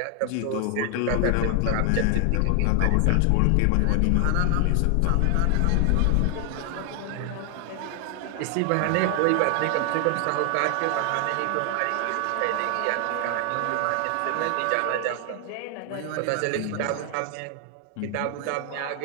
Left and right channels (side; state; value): both; different; correlation 0.00